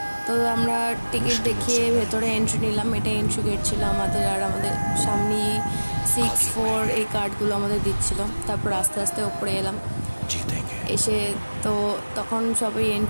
তো আমরা টিকিট দেখিয়ে ভেতরে এন্ট্রি নিলাম। এটা এন্ট্রি গেট ছিল আমাদের, আর আমাদের সামনে 6-4 এই কার্ডগুলো আমাদের দিচ্ছিল। তারপর আস্তে আস্তে ওপরে এলাম। এসে তো তখন সবাই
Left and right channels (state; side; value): inverted; both; correlation -1.00